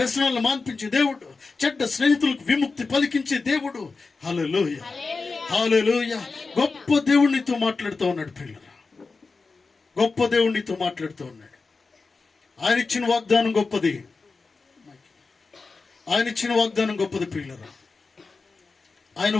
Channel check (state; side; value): quieter; right; 4.2 dB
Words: మాన్పించే దేవుడు, చెడ్డ స్నేహితులకు విముక్తి పలికించే దేవుడు. హల్లెలూయా, హల్లెలూయా. గొప్ప దేవునితో మాట్లాడుతూ ఉన్నాడు పిల్లరా, గొప్ప దేవునితో మాట్లాడుతూ ఉన్నాడు. ఆయన ఇచ్చిన వాగ్దానం గొప్పది, ఆయన ఇచ్చిన వాగ్దానం గొప్పది పిల్లరా. ఆయన